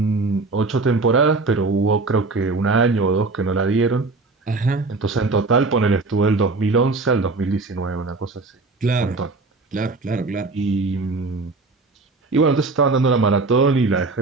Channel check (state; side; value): quieter; left; 3.6 dB